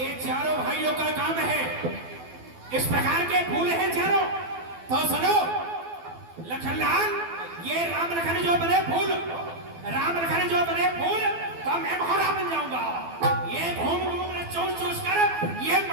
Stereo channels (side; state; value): left; late; 12 ms